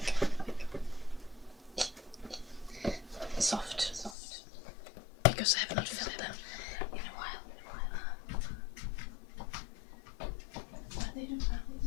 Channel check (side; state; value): right; drops out; at 4.2 s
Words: soft. Because I have not filled them in a while. But they do